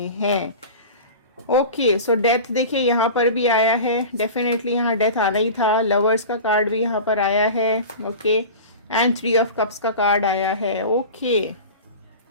हैं। ओके सो डेथ देखिए यहाँ पर भी आया है, डेफिनेटली यहाँ डेथ आना ही था। लवर्स का कार्ड भी यहाँ पर आया है। ओके एंड 3 ऑफ कप्स का कार्ड आया है। ओके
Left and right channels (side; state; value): both; inverted; correlation -0.34